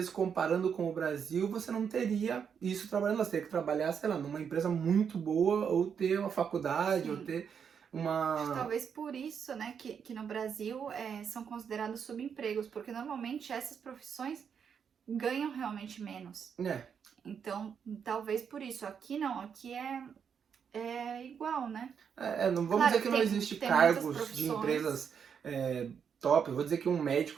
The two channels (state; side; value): quieter; left; 7.2 dB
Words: comparando com o Brasil você não teria isso trabalhando, você teria que trabalhar, sei lá, numa empresa muito boa ou ter uma faculdade, Sim. ou ter uma... Talvez por isso, né, que no Brasil são considerados subempregos, porque normalmente essas profissões ganham realmente menos. Então, talvez por isso. Aqui não, aqui é igual, né? Não vamos Claro, dizer que não existe tem cargos de empresas top. Eu vou dizer que um